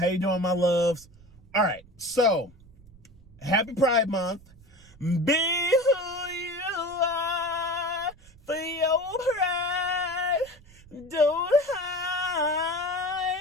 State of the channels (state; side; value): noise; right; rumble, 24 dB below the sound